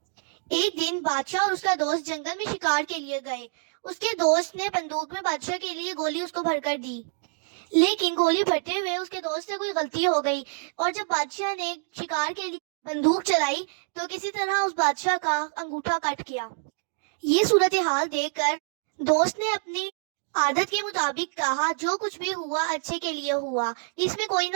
एक दिन बादशाह और उसका दोस्त जंगल में शिकार के लिए गए। उसके दोस्त ने बंदूक में बादशाह के लिए गोली उसको भरकर दी, लेकिन गोली भरते हुए उसके दोस्त से कोई गलती हो गई और जब बादशाह ने शिकार के लिए बंदूक चलाई तो किसी तरह उस बादशाह का अंगूठा कट गया। ये सूरत हाल देखकर दोस्त ने अपनी आदत के मुताबिक कहा, जो कुछ भी हुआ अच्छे के लिए हुआ, इसमें कोई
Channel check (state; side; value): silent; left; 57 dB below the other